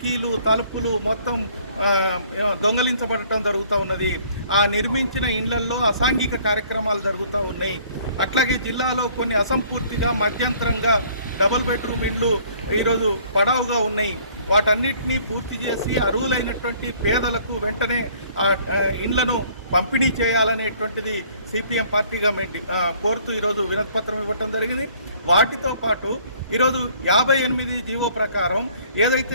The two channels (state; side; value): inverted; both; correlation -0.58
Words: తలుపులు మొత్తం దొంగలించబడటం జరుగుతూ ఉన్నది। ఆ నిర్మించిన ఇండ్లల్లో అసాంఘిక కార్యక్రమాలు జరుగుతూ ఉన్నాయి। అట్లాగే జిల్లాలో కొన్ని అసంపూర్తిగా మధ్యంతరంగా డబుల్ బెడ్రూమ్ ఇండ్లు ఈరోజు పడవుగా ఉన్నాయి। వాటన్నిటినీ పూర్తి చేసి అర్హులైనటువంటి పేదలకు వెంటనే ఆ ఇండ్లను పంపిణీ చేయాలనేటువంటిది సిపిఎం పార్టీగా కోరుతూ ఈరోజు వినతిపత్రం ఇవ్వటం జరిగింది। వాటితో పాటు ఈరోజు 58 జీవో ప్రకారం